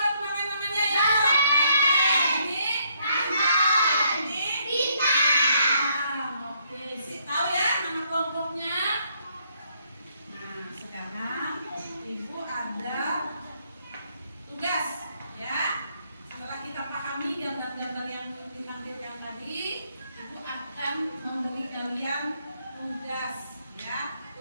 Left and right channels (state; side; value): inverted; both; correlation -0.71